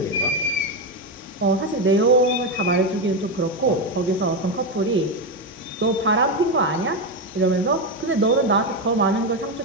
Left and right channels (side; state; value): both; normal; correlation 0.10